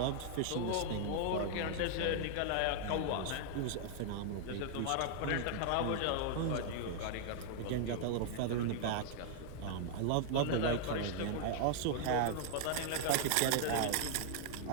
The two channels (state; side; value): different; both; correlation -0.01